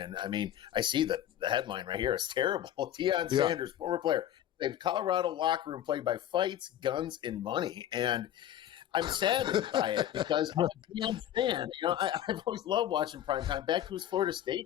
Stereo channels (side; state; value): right; quieter; 11.6 dB